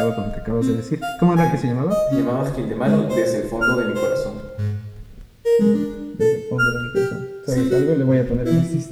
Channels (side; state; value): both; identical; correlation 1.00